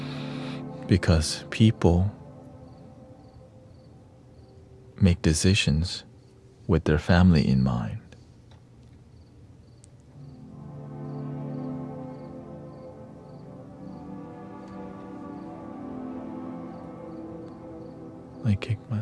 Because people make decisions with their family in mind. I kicked my,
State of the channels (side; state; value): both; identical; correlation 1.00